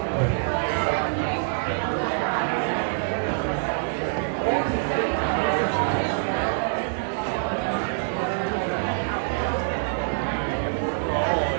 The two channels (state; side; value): silent; left; 62 dB below the other